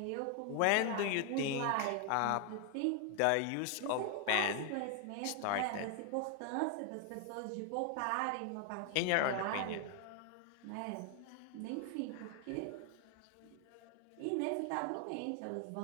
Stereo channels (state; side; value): different; both; correlation 0.00